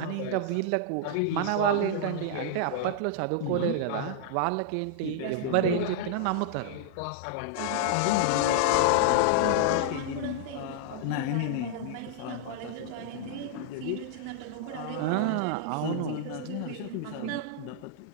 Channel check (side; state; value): both; different; correlation -0.01